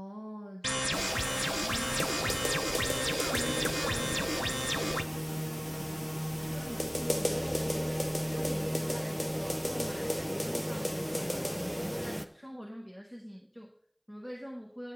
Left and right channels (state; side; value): identical; both; correlation 1.00